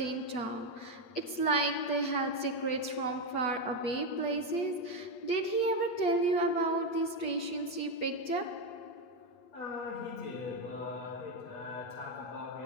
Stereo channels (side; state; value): right; late; 8.2 ms